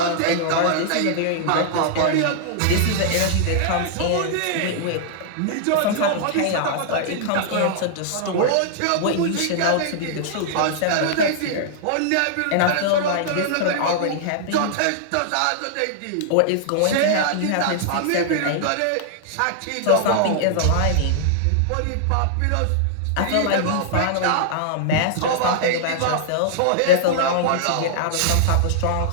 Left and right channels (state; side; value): different; both; correlation -0.01